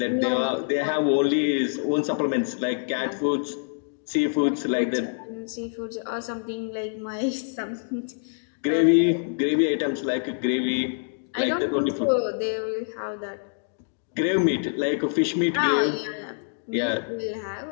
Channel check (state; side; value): silent; right; digital silence